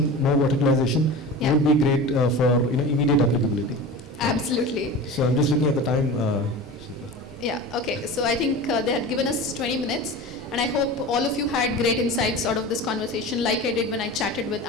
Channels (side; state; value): both; normal; correlation 0.32